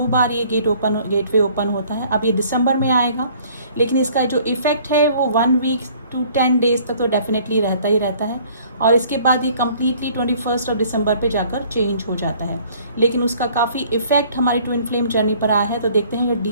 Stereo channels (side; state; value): both; inverted; correlation -0.56